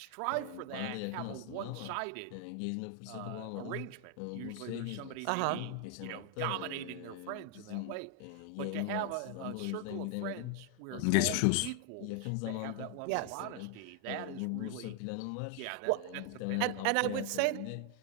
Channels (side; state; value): both; different; correlation 0.00